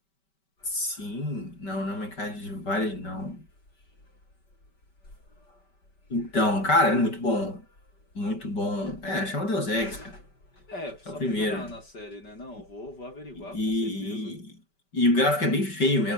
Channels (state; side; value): late; right; 5.2 ms